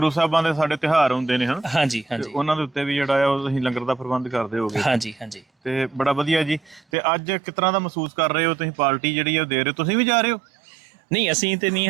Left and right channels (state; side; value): drops out; left; at 6.8 s